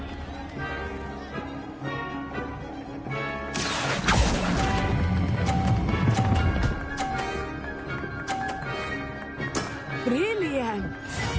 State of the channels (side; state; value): both; identical; correlation 1.00